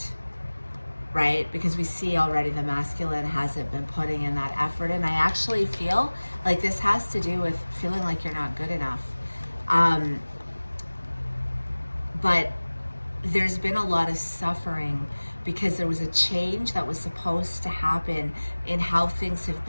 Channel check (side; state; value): both; inverted; correlation -1.00